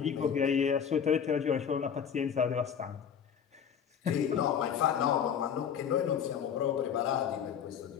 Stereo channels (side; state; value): right; quieter; 8.0 dB